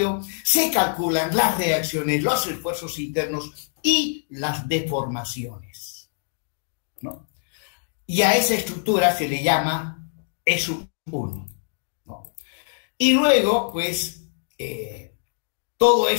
se calculan las reacciones, los esfuerzos internos y las deformaciones, ¿no? Y a esa estructura se le llama E sub 1, ¿no? Y luego, pues, todo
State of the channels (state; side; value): silent; right; digital silence